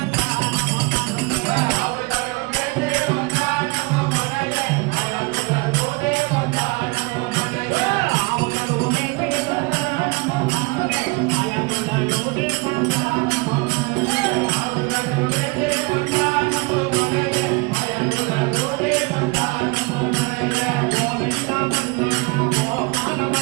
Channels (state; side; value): quieter; left; 26.7 dB